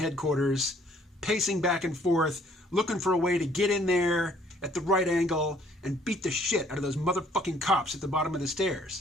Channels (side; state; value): both; normal; correlation 0.61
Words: pacing back and forth, looking for a way to get in there at the right angle and beat the shit out of those motherfucking cops at the bottom of the